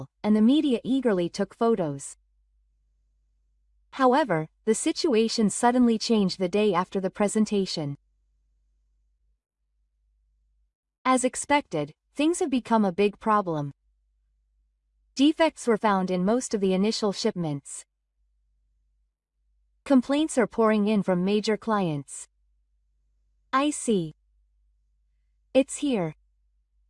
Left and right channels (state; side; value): identical; both; correlation 1.00